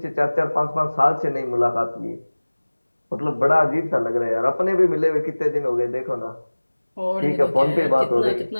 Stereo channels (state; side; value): inverted; both; correlation -1.00